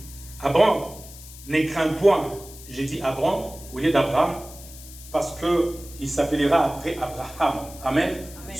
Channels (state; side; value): noise; left; hiss, 17 dB below the sound